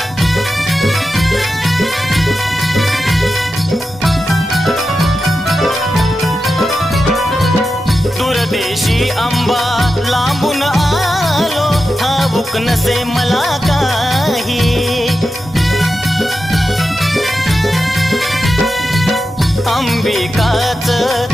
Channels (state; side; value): normal; both; correlation 0.91